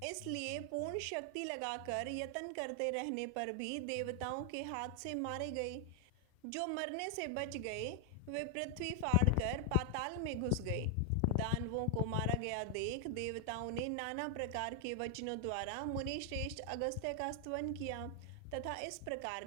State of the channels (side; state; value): both; different; correlation 0.00